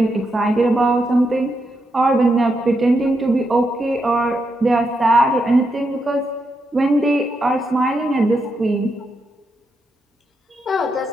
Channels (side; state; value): both; normal; correlation 0.83